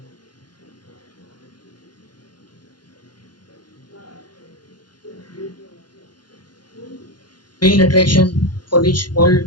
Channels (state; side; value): late; right; 0.71 ms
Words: main attraction for which